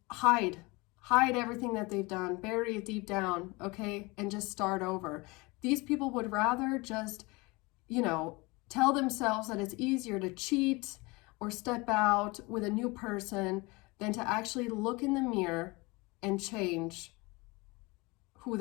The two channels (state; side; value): quieter; right; 24.9 dB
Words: hide everything that they've done, bury it deep down, okay? And just start over. These people would rather just, tell themselves that it's easier to cheat or step out with a new person than to actually look in the mirror and change who